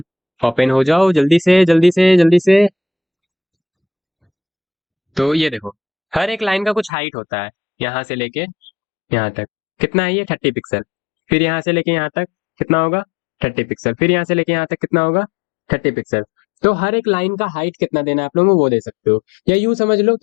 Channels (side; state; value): right; drops out; at 6.9 s